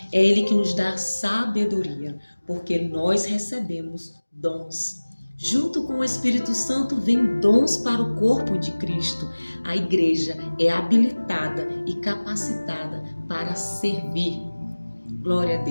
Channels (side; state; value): both; inverted; correlation -1.00